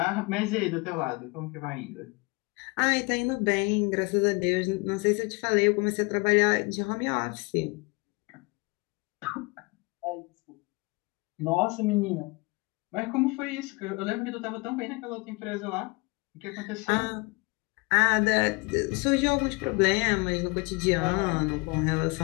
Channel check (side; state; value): right; quieter; 27.3 dB